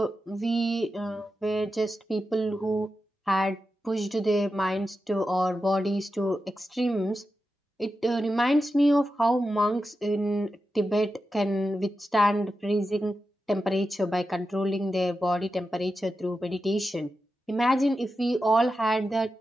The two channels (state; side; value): normal; both; correlation 0.90